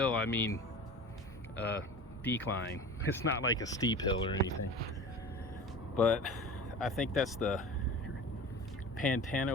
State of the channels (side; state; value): both; normal; correlation 0.36